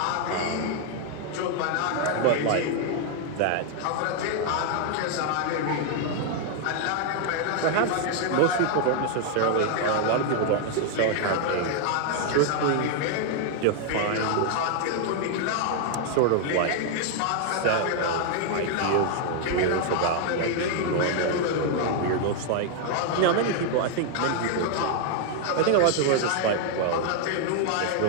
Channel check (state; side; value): different; both; correlation 0.00